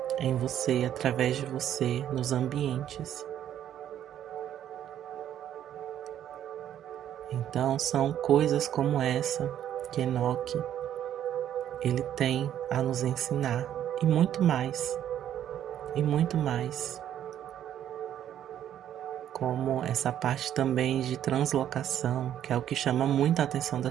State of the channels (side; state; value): left; quieter; 10.7 dB